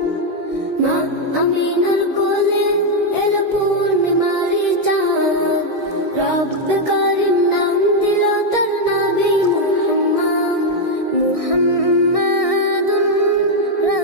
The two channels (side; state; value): right; late; 1.6 ms